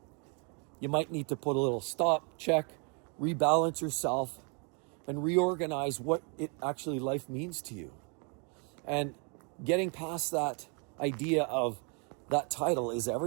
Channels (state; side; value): quieter; left; 36.5 dB